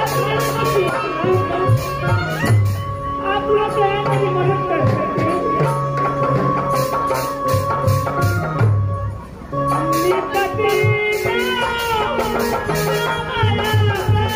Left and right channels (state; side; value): identical; both; correlation 1.00